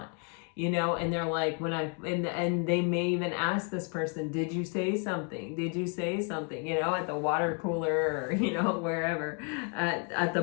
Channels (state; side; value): quieter; right; 38.6 dB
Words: you know. And they're like, and they may even ask this person, did you say something? Did you say something? You know, at the water cooler, or, you know, wherever, at the